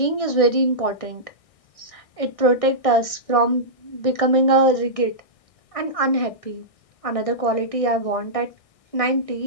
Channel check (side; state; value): right; late; 1.6 ms